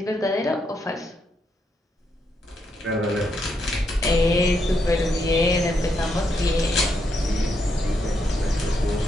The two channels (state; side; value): normal; both; correlation 0.79